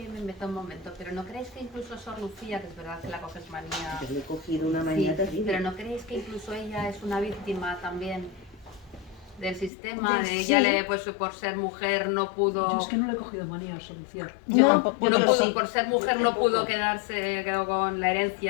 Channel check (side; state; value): right; drops out; at 9.7 s